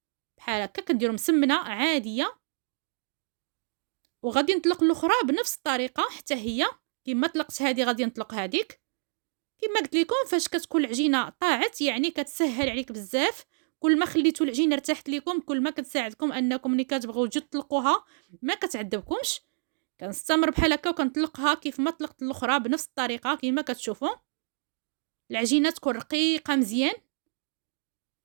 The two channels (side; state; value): left; silent; digital silence